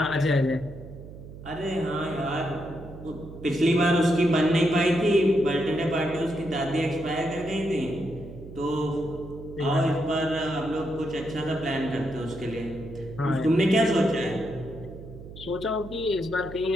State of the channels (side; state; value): right; noise; hum, 15 dB below the sound